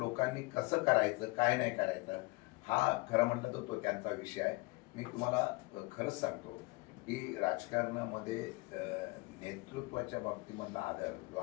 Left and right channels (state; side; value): quieter; right; 25.0 dB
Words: कसं करायचं, काय नाही करायचं हा खरं म्हटलं तर तो त्यांचा विषय आहे. मी तुम्हाला खरंच सांगतो की राजकारणामध्ये नेतृत्वाच्या बाबतीमधला आदर जो